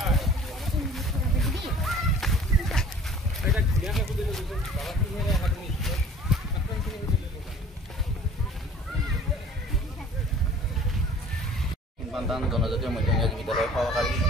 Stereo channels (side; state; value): both; normal; correlation 0.48